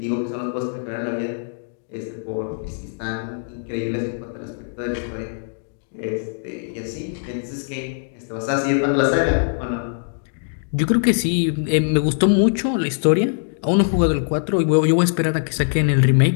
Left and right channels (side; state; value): right; silent; digital silence